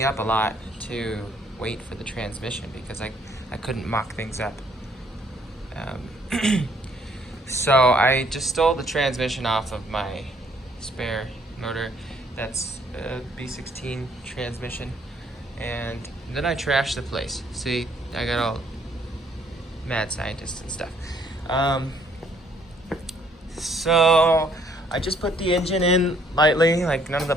up a lot to wait for the transmission because I couldn't mock things up. So I just stole the transmission off of my spare motor. That's a B16 transmission. And then I trashed the place. See, I got all mad scientist and stuff. So I just put the engine in lightly, like none of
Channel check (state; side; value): normal; both; correlation 0.65